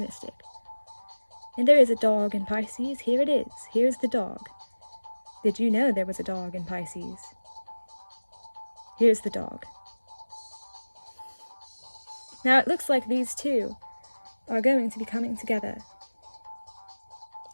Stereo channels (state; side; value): inverted; both; correlation -1.00